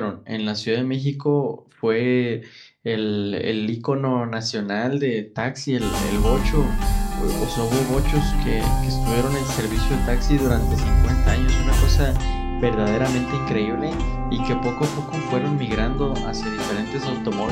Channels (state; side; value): identical; both; correlation 1.00